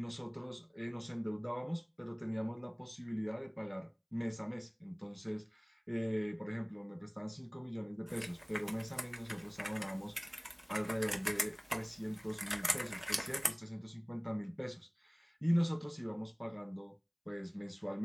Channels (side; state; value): both; identical; correlation 1.00